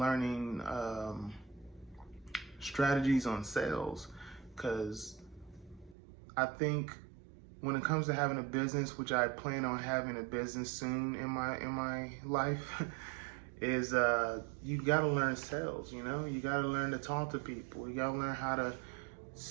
strategies on sales, because I think when it comes to having a business, which I plan on having a business soon in my life, is you gotta learn sales. You gotta learn to talk to people. You gotta learn how to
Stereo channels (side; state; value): left; drops out; at 6.0 s